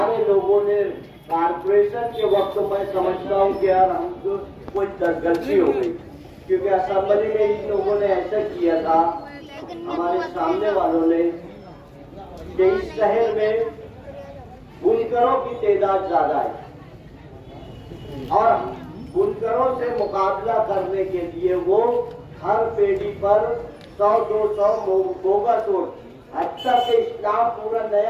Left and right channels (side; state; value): both; identical; correlation 1.00